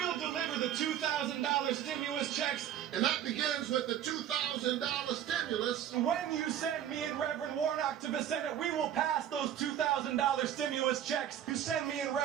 deliver the $2,000 stimulus checks. And that begins with the $2,000 stimulus. When you send me and Reverend Warnock to the Senate, we will pass those $2,000 stimulus checks. You send me and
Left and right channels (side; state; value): left; quieter; 10.4 dB